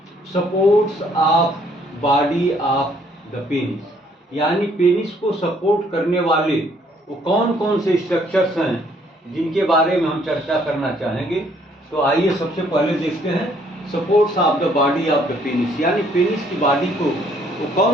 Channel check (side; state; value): both; normal; correlation 0.65